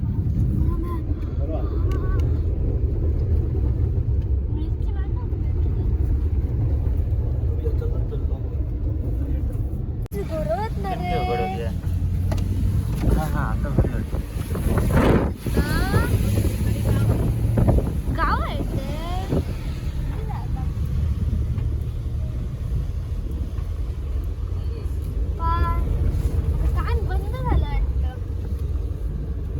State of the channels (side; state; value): both; identical; correlation 1.00